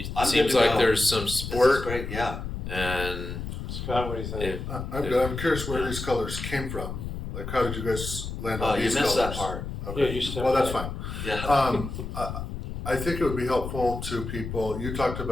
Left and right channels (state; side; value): noise; left; rumble, 6 dB below the sound